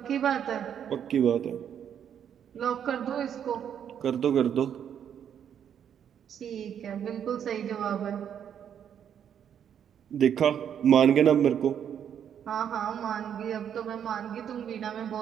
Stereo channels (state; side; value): quieter; left; 8.8 dB